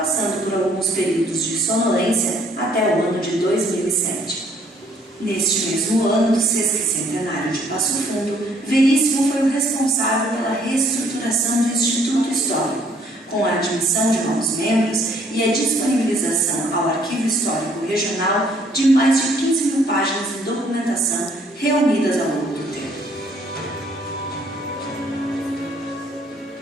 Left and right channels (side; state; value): both; normal; correlation 0.63